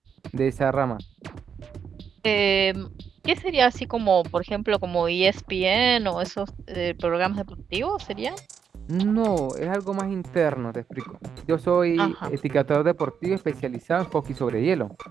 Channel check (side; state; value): left; quieter; 7.2 dB